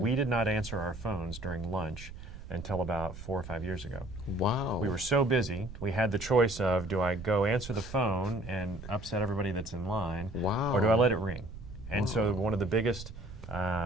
did not answer our phones during lunch until about 4 or 5 years ago. Wow. We were so busy, we had the choice of, do I go answer the phone and upset everybody that's in line, or do I let it ring? And so one of the biggest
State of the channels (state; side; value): noise; right; rumble, 12 dB below the sound